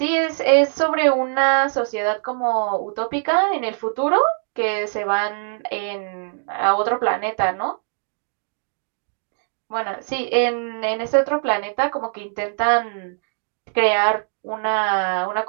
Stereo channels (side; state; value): left; silent; digital silence